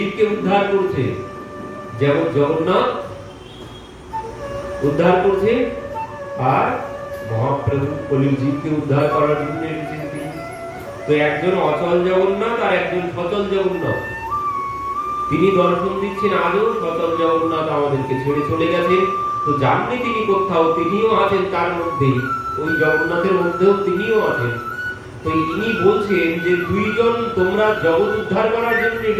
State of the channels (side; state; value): both; identical; correlation 1.00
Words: উদ্ধার করছে। যেমন জগন্নাথ উদ্ধার করছে, আর মহাপ্রভু কলির জীবকে উদ্ধার করার জন্য এসেছেন তিনি। তো একজন অচল জগন্নাথ আর একজন সচল জগন্নাথ, তিনি দর্শন দিচ্ছেন। আজও সচল জগন্নাথ আমাদেরকে ছেড়ে চলে গেছেন, তো জাননি তিনি কোথাও, তিনিও আছেন তার মধ্যেই, ওই জগন্নাথের মধ্যেও তিনিও আছেন। তো ইনি বলছেন যে দুইজন তোমরা জগৎ উদ্ধার করার জন্য